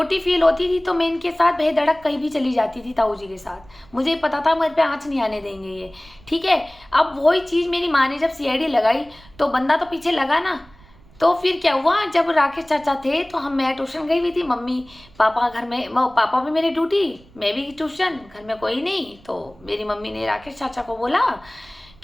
फील होती थी, तो मैं इनके साथ बेधड़क कहीं भी चली जाती थी ताऊ जी के साथ। मुझे पता था मेरे पे आँच नहीं आने देंगे ये। ठीक है, अब वही चीज़ मेरी माँ ने जब सीआईडी लगाई तो बंदा तो पीछे लगा ना। तो फिर क्या हुआ, जब राकेश चाचा थे तो मैं ट्यूशन गई हुई थी, मम्मी पापा घर में, पापा भी मेरी ड्यूटी, मैं भी ट्यूशन, घर में कोई नहीं। तो मेरी मम्मी ने राकेश चाचा को बोला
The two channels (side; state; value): right; noise; rumble, 26 dB below the sound